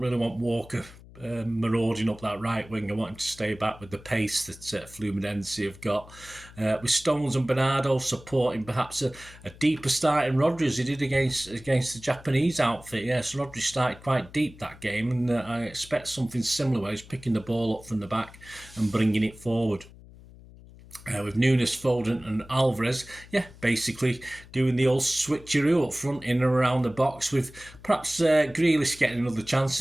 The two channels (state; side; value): noise; left; hum, 20 dB below the sound